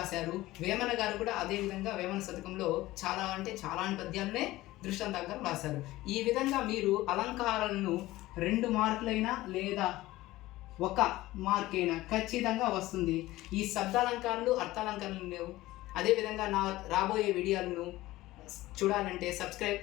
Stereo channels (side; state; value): right; quieter; 17.5 dB